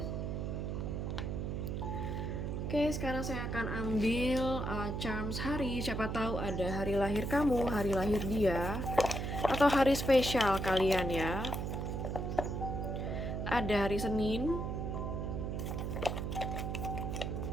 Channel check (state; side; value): noise; right; hum, 2 dB below the sound